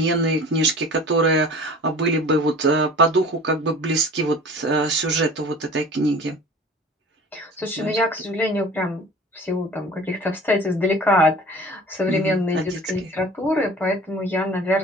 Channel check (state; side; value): normal; both; correlation 0.42